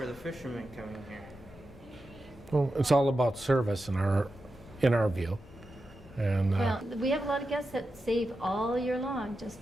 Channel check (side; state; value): both; normal; correlation 0.90